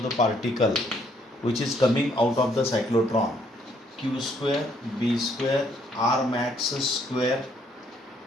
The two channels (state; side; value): normal; both; correlation 0.68